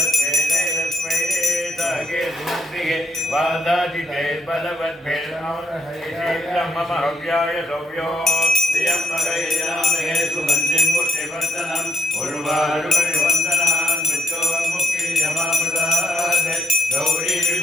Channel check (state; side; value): normal; both; correlation 0.76